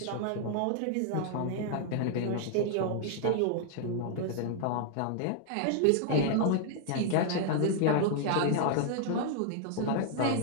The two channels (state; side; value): different; both; correlation 0.00